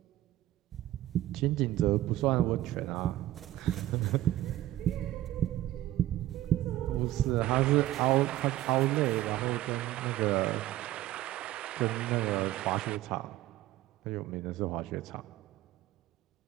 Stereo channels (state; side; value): quieter; left; 15.0 dB